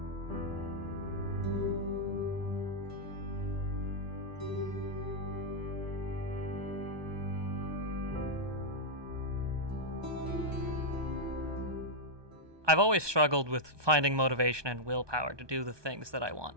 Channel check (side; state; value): left; late; 1.2 ms